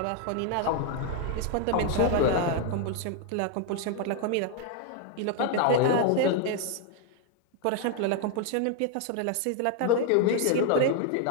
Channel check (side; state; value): both; different; correlation 0.00